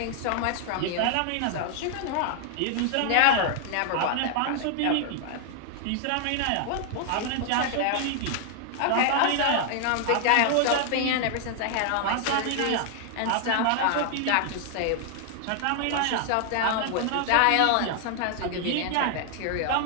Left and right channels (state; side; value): different; both; correlation 0.00